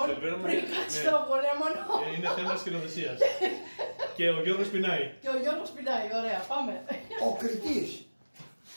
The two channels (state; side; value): inverted; both; correlation -1.00